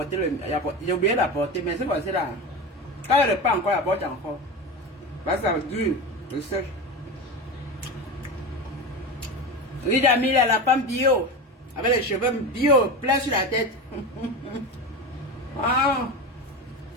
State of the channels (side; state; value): both; normal; correlation 0.24